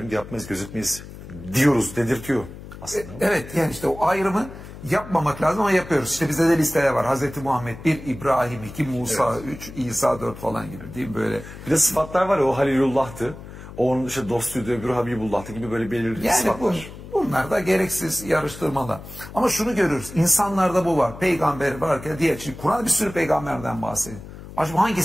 yapmayız, gözetmeyiz diyoruz, dedirtiyor aslında. Evet yani işte o ayrımı yapmamak lazım ama yapıyoruz. İşte bizde de listeler var. Hazreti Muhammed 1, İbrahim 2, Musa 3, İsa 4 falan gibi değil mi böyle? Bir de sıfatlar var ya o Halilullah'tı. O onun işte dostuydu, öbürü Habibullah'tı gibi böyle belirli yani sıfatlar. Bunlar da gereksiz yarıştırmalar. Ama şunu görürüz. İnsanlarda bu var. Peygamber varken diğer. Şimdi Kur'an bir sürü peygamberden bahsediyor. Acaba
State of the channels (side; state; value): left; noise; hum, 14 dB below the sound